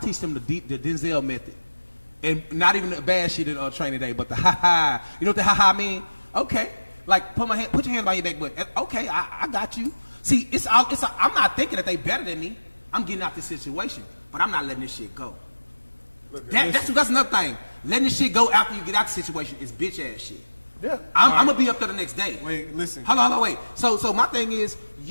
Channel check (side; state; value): both; inverted; correlation -1.00